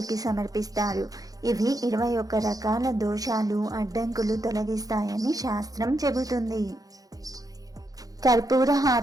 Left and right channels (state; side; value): late; left; 0.18 ms